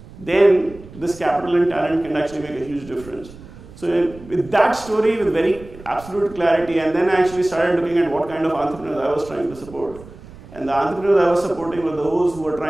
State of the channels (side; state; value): right; noise; rumble, 18 dB below the sound